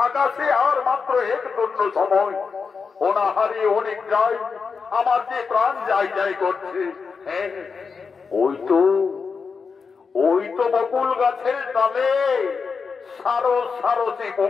আকাশে আর মাত্র এক দণ্ড সময়। অনাহারে অনেক যায়, আমার যে প্রাণ যাই যাই করছে। হ্যাঁ, ওই তো বকুল গাছের ডালে সারো সারো সে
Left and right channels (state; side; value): quieter; right; 5.3 dB